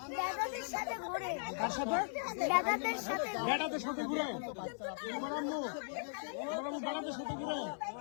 দাদাদের সাথে ঘোরে। কার সাথে? দাদাদের সাথে ঘোরে। বেটাদের সাথে ঘুরে? তোমার আম্মু বেটাদের সাথে ঘুরে?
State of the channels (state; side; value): silent; right; 52 dB below the other